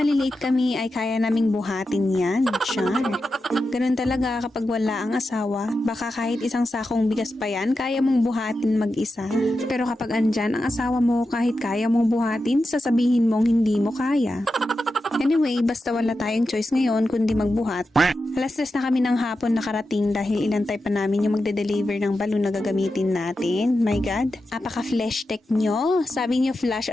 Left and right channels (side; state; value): both; normal; correlation 0.90